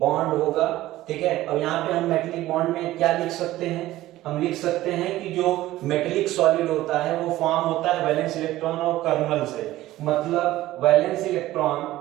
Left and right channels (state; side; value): quieter; left; 15.8 dB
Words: होगा। ठीक है, अब यहाँ पे हम मेटेलिक बॉन्ड में क्या लिख सकते हैं, हम लिख सकते हैं कि जो मेटेलिक सॉलिड होता है वो फॉर्म होता है वैलेंस इलेक्ट्रॉन और कर्नल से। मतलब वैलेंस